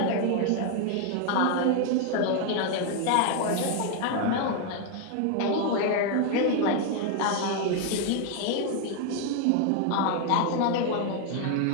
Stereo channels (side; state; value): both; different; correlation 0.01